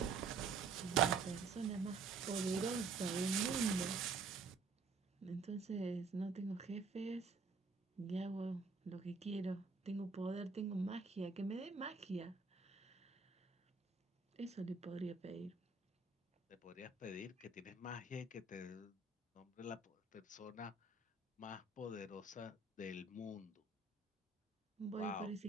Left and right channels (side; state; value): left; quieter; 4.4 dB